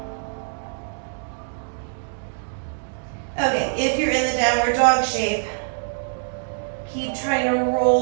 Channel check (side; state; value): left; silent; digital silence